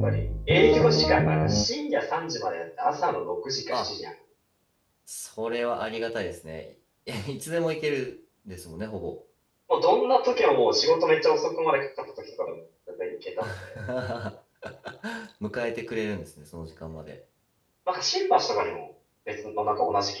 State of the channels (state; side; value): identical; both; correlation 1.00